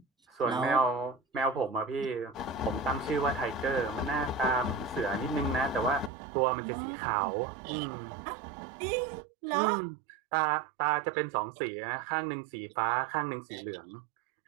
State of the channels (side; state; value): left; drops out; at 6.1 s